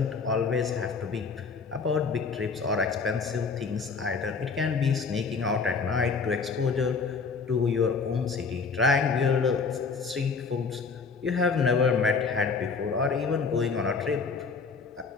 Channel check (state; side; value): quieter; right; 4.9 dB